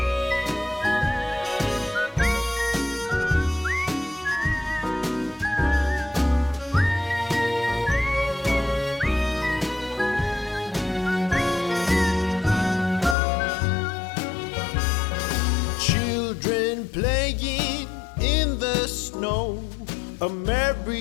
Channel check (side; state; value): right; drops out; at 13.2 s